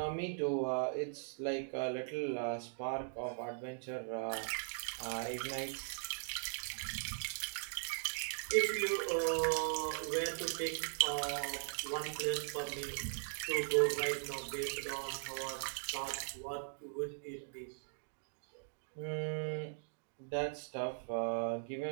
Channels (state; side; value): silent; left; digital silence